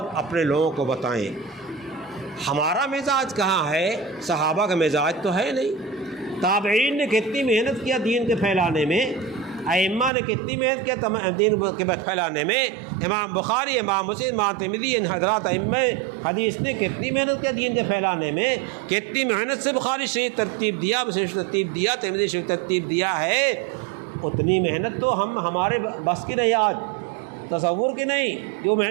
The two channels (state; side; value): drops out; left; at 10.1 s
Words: اپنے لوگوں کو بتائیں۔ ہمارا مزاج کہاں ہے؟ صحابہ کا مزاج تو ہے نہیں۔ تابعین نے کتنی محنت کیا دین کے پھیلانے میں، ائمہ نے کتنی محنت کیا دین کے پھیلانے میں، امام بخاری، امام مسلم، امام ترمذی، ان حضرات ائمہ حدیث نے کتنی محنت کیا دین کے پھیلانے میں، کتنی محنت سے بخاری شریف ترتیب دیا، مسلم شریف ترتیب دیا، ترمذی شریف ترتیب دیا ہے۔ اتنی محنت تو ہمارے بس کی نہیں، آج تصور کی نہیں جو